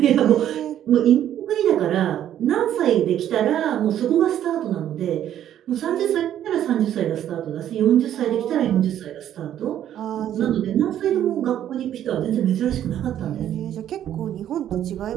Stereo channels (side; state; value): left; quieter; 11.0 dB